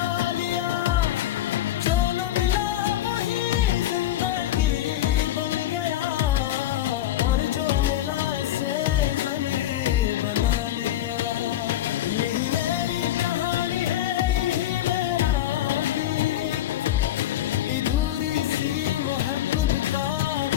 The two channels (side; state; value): right; quieter; 12.9 dB